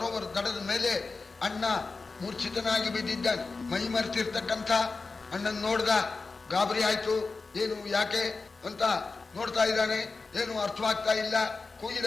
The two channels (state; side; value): quieter; right; 4.0 dB